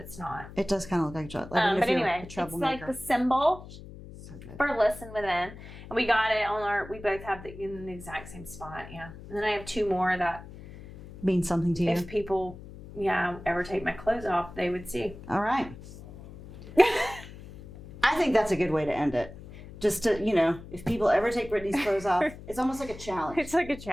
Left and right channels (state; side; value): noise; left; hum, 15 dB below the sound